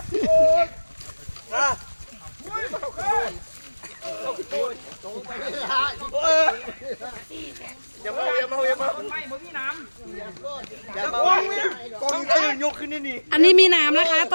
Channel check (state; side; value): inverted; both; correlation -1.00